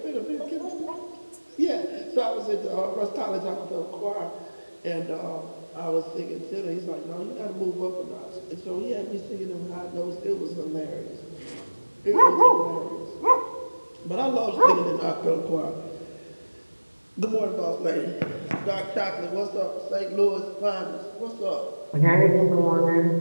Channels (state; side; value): inverted; both; correlation -1.00